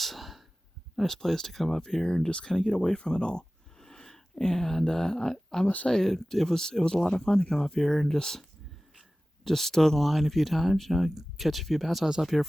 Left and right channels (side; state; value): both; normal; correlation 0.97